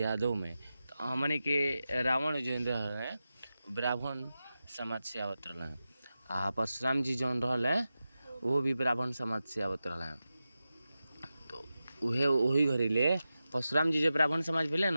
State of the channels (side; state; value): both; inverted; correlation -0.93